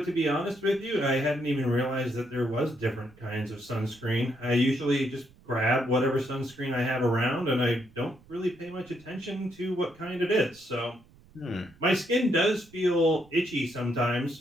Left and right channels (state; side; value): noise; right; rumble, 27 dB below the sound